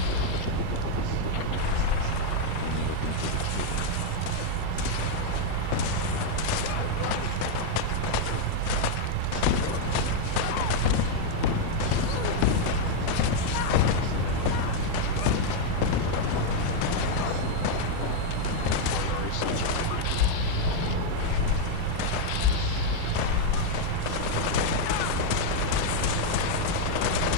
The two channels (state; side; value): different; both; correlation 0.01